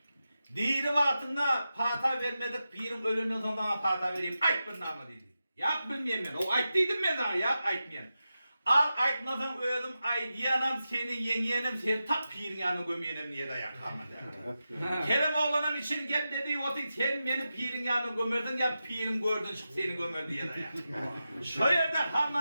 Diri vaktinde pata vermedik, pirin ölünün sonunda pata vereyim, ayt bir namı dedi. Yak bilmeyeyim ben, o ayt dedim ben daha, yak aytmayayım. Al aytmasan öldüm, ay diyanam seni yengeyenim, seni tak pirin yanına gömeyenim niye de yakamadı. Kerim oğlanın için gel dedi, otik sen beni pirin yanına gömerdin ya pirim gördün çık seni gömer diye de yak. Şu yerde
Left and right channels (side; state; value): both; inverted; correlation -0.91